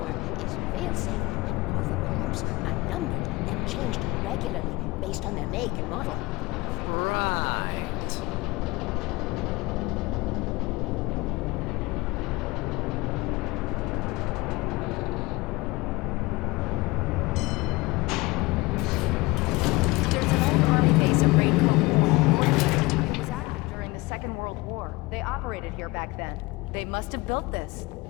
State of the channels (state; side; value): quieter; right; 22.6 dB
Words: is fail-safe, and all the bulbs are numbered and changed regularly based on their make and model. Right. There's an old army base at Rainbow. It was active during the Second World War. They operated here back then. They must have built this.